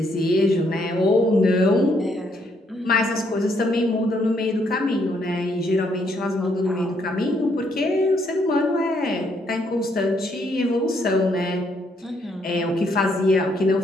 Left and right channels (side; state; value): both; normal; correlation 0.72